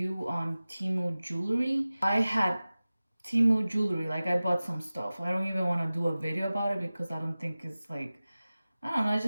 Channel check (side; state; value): both; inverted; correlation -0.97